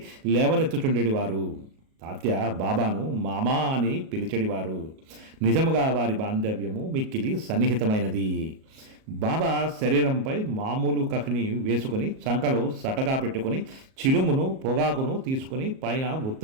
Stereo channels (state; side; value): late; left; 38 ms